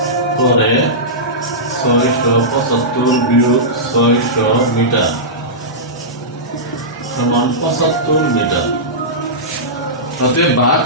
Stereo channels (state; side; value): normal; both; correlation -0.15